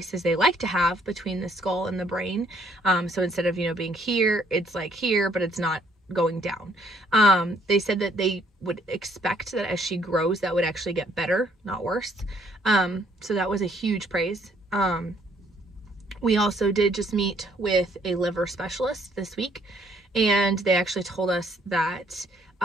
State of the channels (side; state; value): both; normal; correlation 0.65